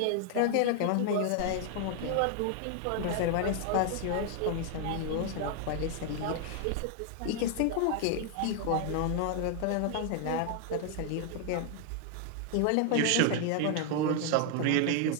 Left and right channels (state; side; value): different; both; correlation 0.00